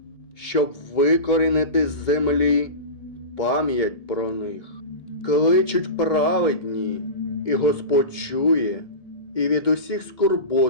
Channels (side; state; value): right; late; 1.7 ms